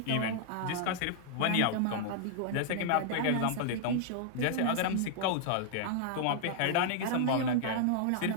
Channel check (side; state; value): both; different; correlation -0.01